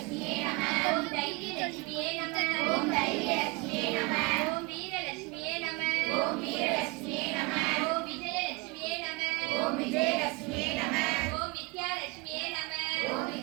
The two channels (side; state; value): left; quieter; 25.9 dB